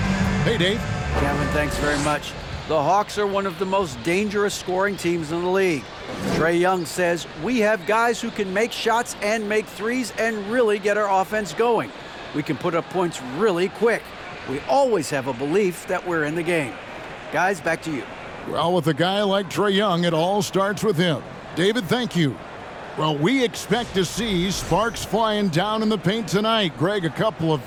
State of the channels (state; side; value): identical; both; correlation 1.00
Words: Hey, Dave. Kevin, thanks very much. The Hawks are one of the most dangerous scoring teams in the league. Trae Young says, we have guys who can make shots and make threes and really get our offense going. We can put up points really quick. We always have a belief that we're in the game. Guys, back to you. Well, with a guy like Trae Young, it all starts with him. David, thank you. Well, we expect to see sparks flying down in the paint tonight. Greg, a couple of